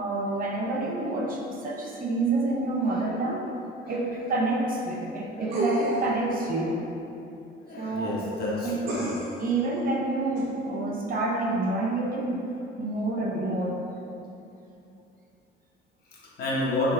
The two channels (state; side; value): normal; both; correlation 0.38